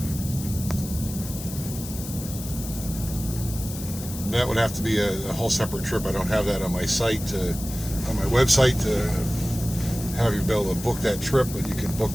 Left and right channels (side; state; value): left; noise; hiss, 11 dB below the sound